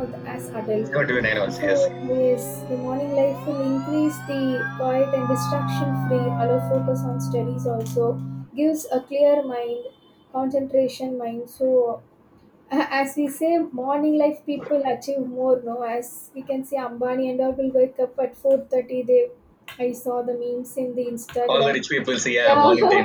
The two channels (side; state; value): both; identical; correlation 1.00